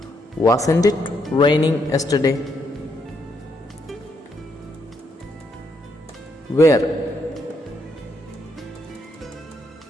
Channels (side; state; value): both; normal; correlation 0.76